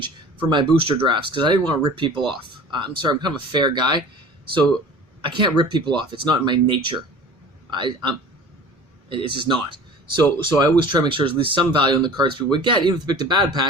for my booster drafts, because I didn't want to rip people off. I'm sorry, I'm kind of a fair guy, so I can't rip people off. It's not in my nature. It's just not. So I always try to make sure there's at least some value in the cards people would get, even if they picked a bad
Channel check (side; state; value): both; normal; correlation 0.42